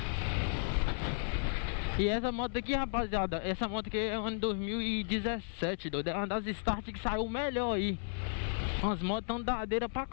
E essa moto aqui, rapaziada, essa moto aqui é ano 2017, doido. É uma das Start que saiu melhor aí. As motos tão dadeiras pra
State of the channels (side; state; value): right; silent; 55 dB below the other